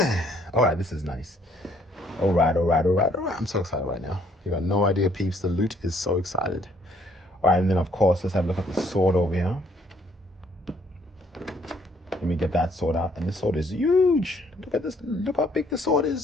All right, this is nice. All right. I'm so excited right now. You got no idea, peeps. The loot is so excited. All right, and then, of course, let's have a look at the sword over here. Let me get that sword out. And this sword is huge. Look at this. Look how big the sword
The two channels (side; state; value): both; normal; correlation 0.65